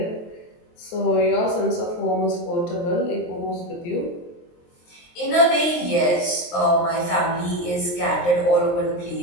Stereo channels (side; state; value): right; late; 23 ms